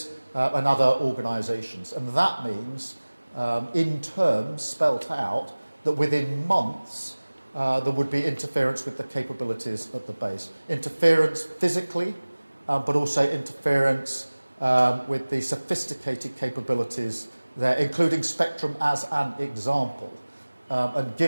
and other organisations. And that means, in terms spelt out, that within months there would be interference with the capabilities at the base. Interference physically, but also interference with the sophisticated capabilities there, including spectrum as an example. And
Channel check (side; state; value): both; inverted; correlation -1.00